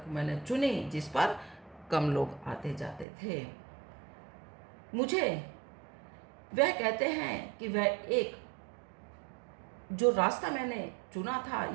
मैंने चुनी जिस पर कम लोग आते जाते थे। मुझे वह कहते हैं कि वह एक जो रास्ता मैंने चुना था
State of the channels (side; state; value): left; drops out; at 3.1 s